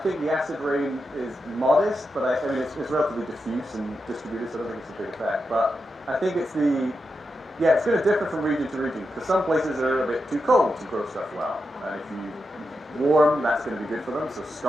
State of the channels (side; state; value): both; normal; correlation 0.87